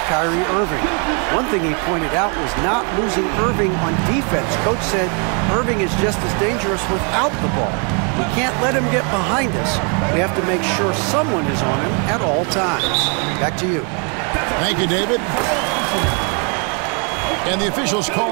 Kyrie Irving. One thing he pointed out was not losing Irving on defense. Coach said Irving is just as dangerous without the ball. We can't let him get behind us. We have to make sure someone is on him at all times. Back to you. Thank you, David. And the officials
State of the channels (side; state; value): left; quieter; 37.3 dB